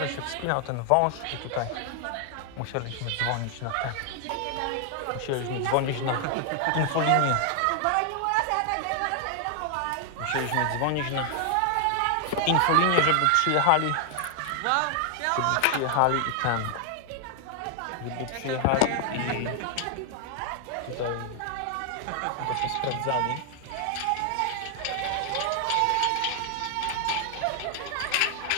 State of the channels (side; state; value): both; different; correlation 0.00